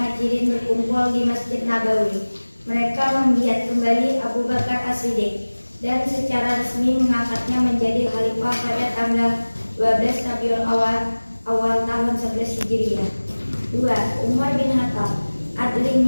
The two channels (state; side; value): inverted; both; correlation -1.00